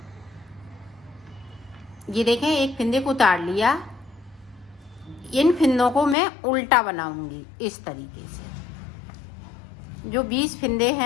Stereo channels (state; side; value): drops out; right; at 6.2 s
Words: ये देखें, एक फिंदे को उतार लिया। इन फिंदों को मैं उल्टा बनाऊंगी इस तरीके से। जो 20 फिंदे